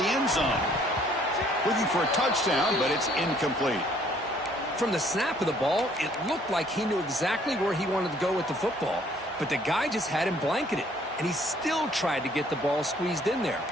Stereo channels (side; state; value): both; normal; correlation 0.61